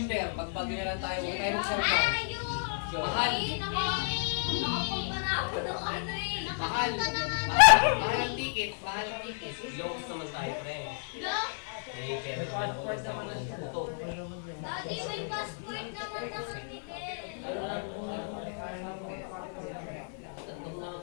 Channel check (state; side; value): silent; right; 57 dB below the other